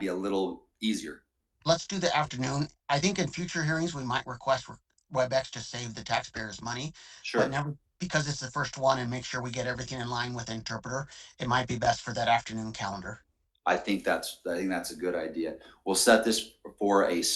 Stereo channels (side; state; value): both; identical; correlation 1.00